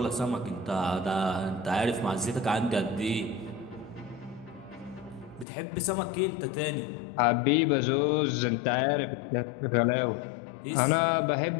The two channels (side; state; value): right; drops out; at 5.5 s